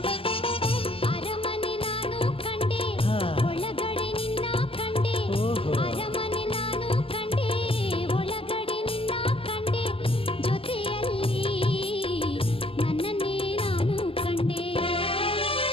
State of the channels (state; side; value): late; right; 0.26 ms